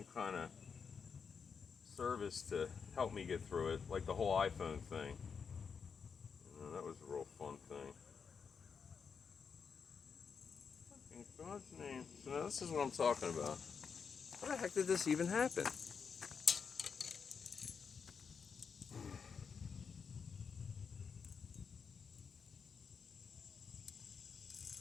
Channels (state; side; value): quieter; right; 6.1 dB